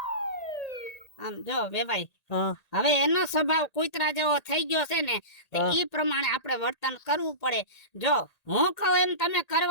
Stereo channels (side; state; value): right; late; 1.8 ms